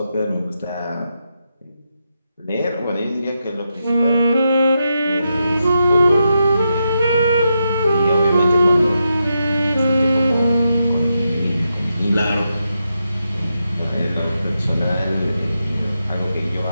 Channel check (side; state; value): both; inverted; correlation -0.85